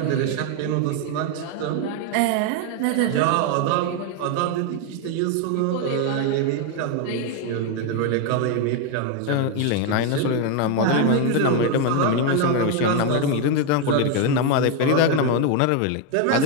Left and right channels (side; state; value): both; different; correlation 0.01